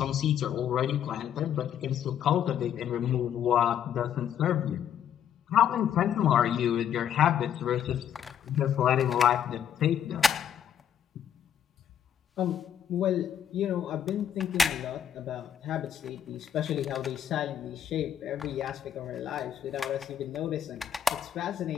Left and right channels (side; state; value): right; quieter; 9.4 dB